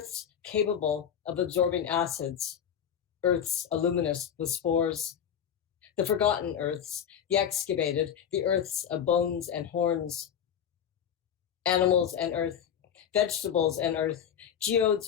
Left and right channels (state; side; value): quieter; right; 8.8 dB